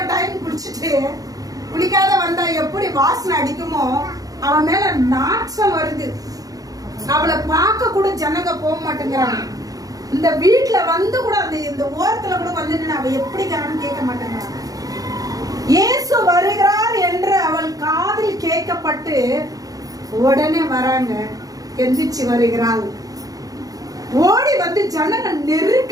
டைம் குளிச்சுட்டு குளிக்காத வந்தா எப்படி வாசனை அடிக்குமோ, அவன் மேல நாட்டம் வருது. அவளை பார்க்க கூட ஜனங்க போக மாட்டேங்கிறாங்க. இந்த வீட்டுல வந்து கூட இந்த ஓரத்துல கூட வந்து அவ எப்படி கேட்க மாட்டேங்கிறாங்க. இயேசு வருகிறார் என்று அவள் காதில் கேட்கப்பட்டு உடனே வராங்க. எந்திரிச்சு வருகிறாள். ஓடி வந்து ஜனங்க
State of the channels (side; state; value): left; late; 0.17 ms